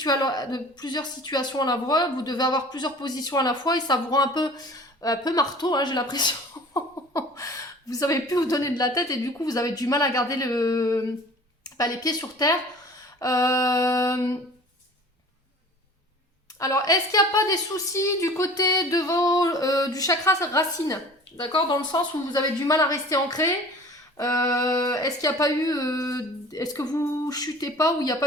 à la fois, vous devez avoir plusieurs positions à la fois et ça vous rend un peu marteau, hein, j'ai l'impression. Vous savez plus vous donner de la tête et du coup vous avez du mal à garder les pieds sur terre. Alors, est-ce qu'il n'y a pas des soucis du côté de du chakra racine? D'accord? Dans le sens où vous avez du mal à rester ancré. Est-ce qu'il n'y a pas eu... est-ce que vous chutez pas ou il n'y a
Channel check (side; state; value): both; normal; correlation 0.45